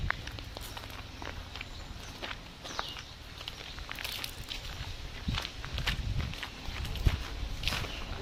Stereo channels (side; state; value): both; identical; correlation 1.00